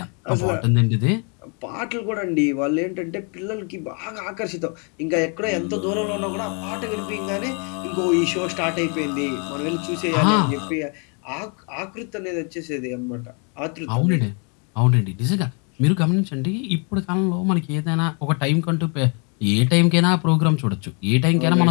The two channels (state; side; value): quieter; right; 36.5 dB